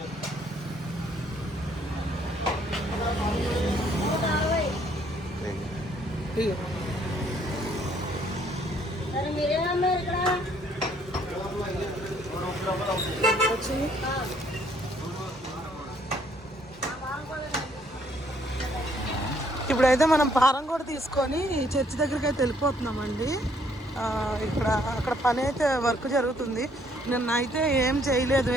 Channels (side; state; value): both; normal; correlation 0.66